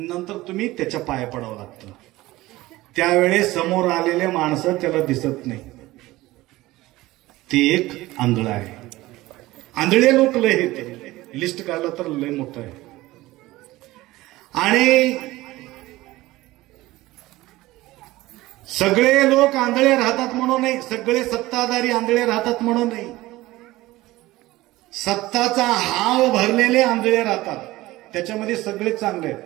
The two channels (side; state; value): left; quieter; 18.2 dB